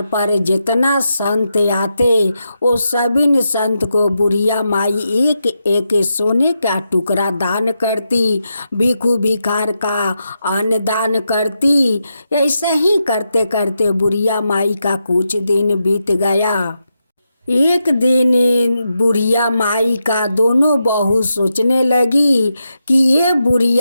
पर जितना संत आते, वो सभी संत को बुढ़िया माई एक एक सोने का टुकड़ा दान करती, भिखू भिखार का अन्न दान करती। ऐसे ही करते करते बुढ़िया माई का कुछ दिन बीत गया। एक दिन बुढ़िया माई का दोनों बहू सोचने लगी कि ये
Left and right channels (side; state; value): both; inverted; correlation -0.86